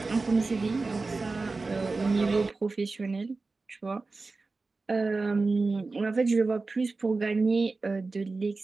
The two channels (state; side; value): quieter; left; 3.8 dB